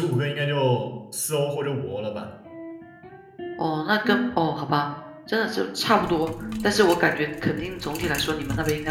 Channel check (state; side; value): identical; both; correlation 1.00